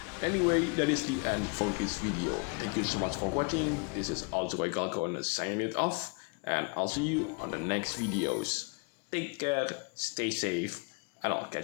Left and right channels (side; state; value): right; quieter; 33.5 dB